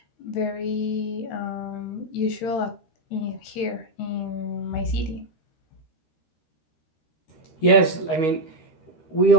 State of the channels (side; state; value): right; late; 13 ms